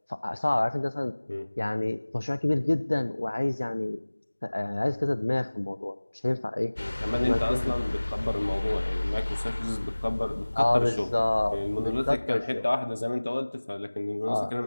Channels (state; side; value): inverted; both; correlation -1.00